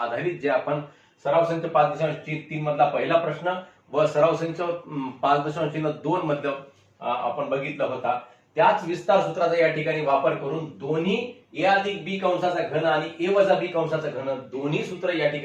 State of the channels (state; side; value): identical; both; correlation 1.00